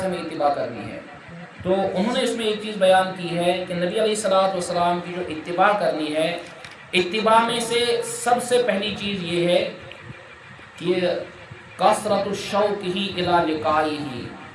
ہمیں اتباع کرنی ہے۔ تو انہوں نے اس میں ایک چیز بیان کی ہے کہ نبی علیہ السلام کی جو اتباع کرنی ہے، اتباع میں سے سب سے پہلی چیز یہ ہے کہ کثرت الشوق ہی الی لقائہ،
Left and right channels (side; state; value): both; identical; correlation 1.00